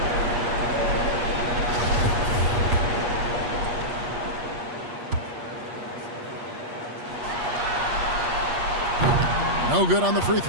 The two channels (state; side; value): late; left; 8.4 ms